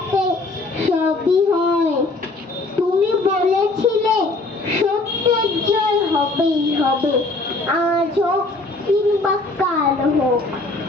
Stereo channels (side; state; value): right; quieter; 3.2 dB